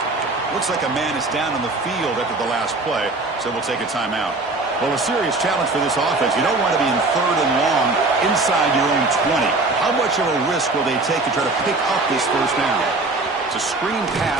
Looks like a man is down on the field after the last play, so we'll take a timeout. Well, a serious challenge for this offense. You don't want to be in third and long inside your own 20. How much of a risk will they take to try to pick up this first down? It's a screen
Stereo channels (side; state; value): left; quieter; 3.3 dB